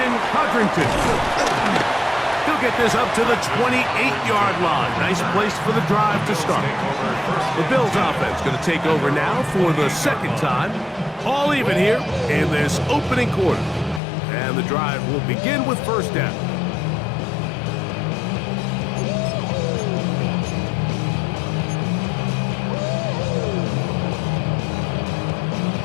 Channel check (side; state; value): right; drops out; at 14.0 s